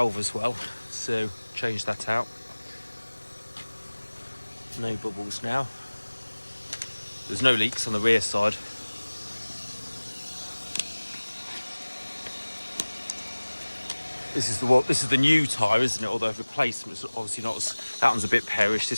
as well, so change that out. No bubbles now. There's no leaks on the rear side. This is the new tyre, isn't it? Although replacement's obviously not as, that one's a bit perished,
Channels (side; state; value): both; inverted; correlation -1.00